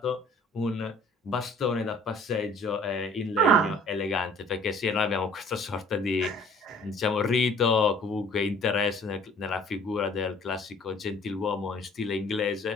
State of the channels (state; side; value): normal; both; correlation 0.54